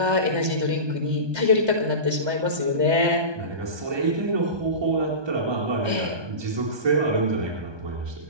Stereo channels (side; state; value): left; late; 1.2 ms